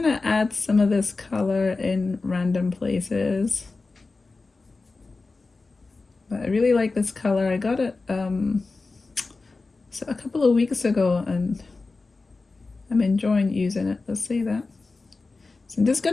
to add some of this color in random places. But I really like this color. I got it so a couple of weeks ago and I'm enjoying using it. Let's see that. So I'm just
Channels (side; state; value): right; quieter; 3.8 dB